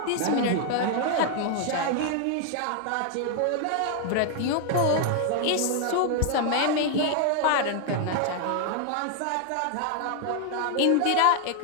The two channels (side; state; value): both; different; correlation 0.00